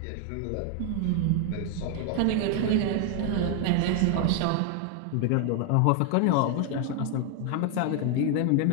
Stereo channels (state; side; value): different; both; correlation 0.01